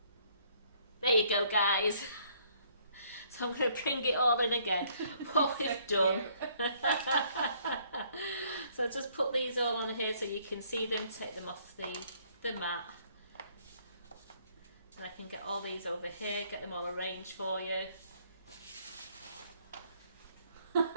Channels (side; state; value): both; inverted; correlation -0.64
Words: you go, guys. So I'm going to bring it all in again, what we've done. So just put these all on here so you can see them, take them off the mat. And I can get all these over here, get them all arranged for you.